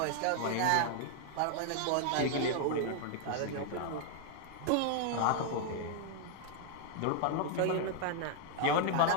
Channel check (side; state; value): both; different; correlation 0.00